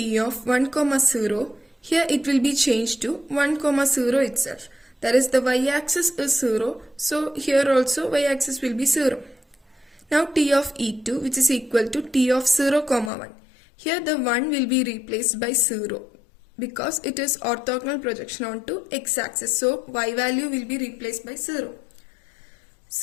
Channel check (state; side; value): drops out; right; at 13.1 s